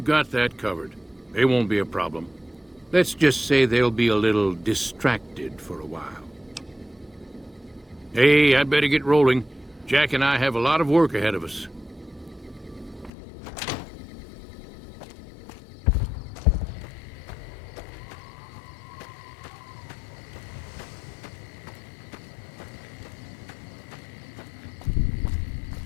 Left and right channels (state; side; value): drops out; right; at 13.1 s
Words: got that covered. They won't be a problem. Let's just say they'll be a little distracted for a while. Hey, I'd better get rolling. Jack and I have a lot of work ahead of us.